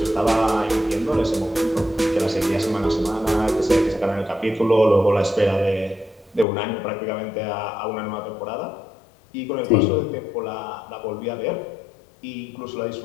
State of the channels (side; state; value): right; drops out; at 6.5 s